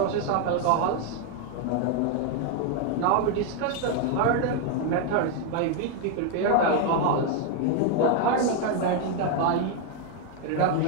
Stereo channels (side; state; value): both; different; correlation 0.01